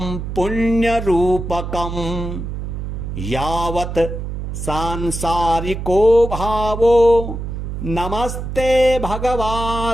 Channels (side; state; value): right; noise; hum, 6 dB below the sound